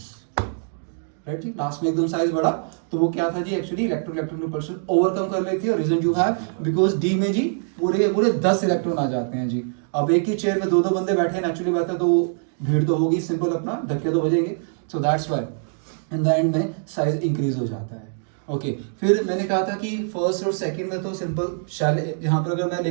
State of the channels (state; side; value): silent; left; digital silence